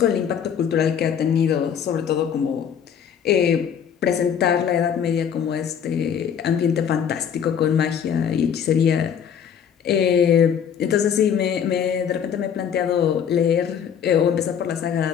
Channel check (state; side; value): quieter; right; 8.1 dB